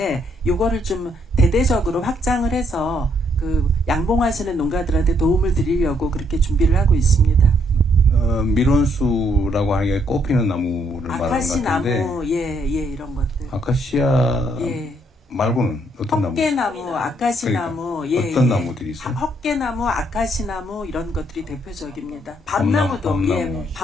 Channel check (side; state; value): both; normal; correlation 0.71